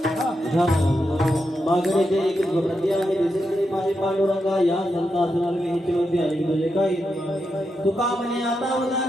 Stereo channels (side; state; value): both; normal; correlation 0.86